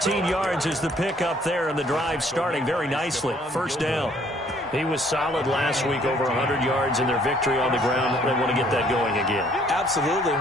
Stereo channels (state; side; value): normal; both; correlation 0.62